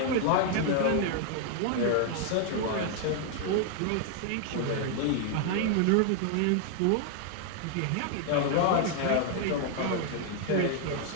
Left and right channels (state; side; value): different; both; correlation 0.00